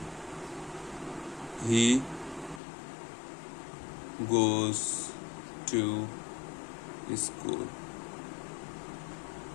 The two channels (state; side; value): drops out; right; at 2.6 s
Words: হি গোজ টু স্কুল।